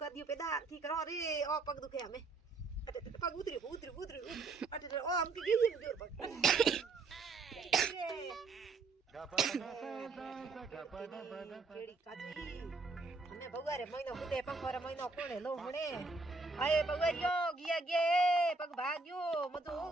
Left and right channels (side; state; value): left; quieter; 3.7 dB